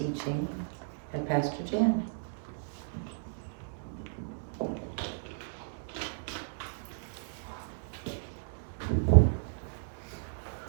at Pastor Jan.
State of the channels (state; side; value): silent; left; digital silence